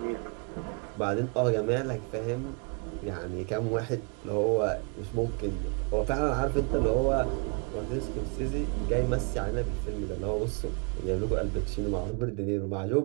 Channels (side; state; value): left; quieter; 35.8 dB